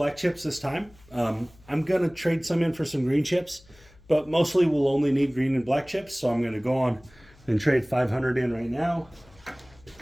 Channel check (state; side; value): noise; left; hum, 26 dB below the sound